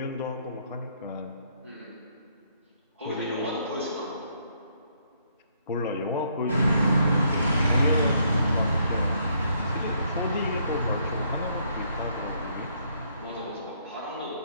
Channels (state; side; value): inverted; both; correlation -0.70